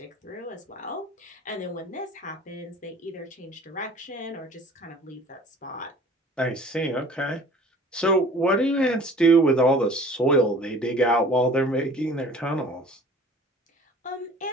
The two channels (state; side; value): normal; both; correlation 0.47